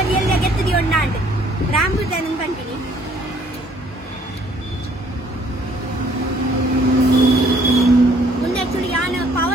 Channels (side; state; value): both; normal; correlation 0.62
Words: एल्ले गेत्ती ओंडांड रामबुटन कंटिनी ಮುಂದೆ ಆಕ್ಚುಲಿ ಯಾನ